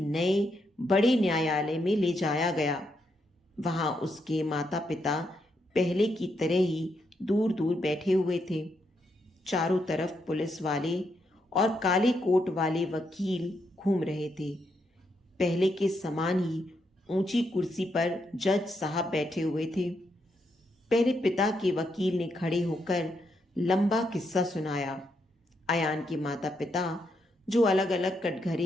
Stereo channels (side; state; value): both; normal; correlation 0.80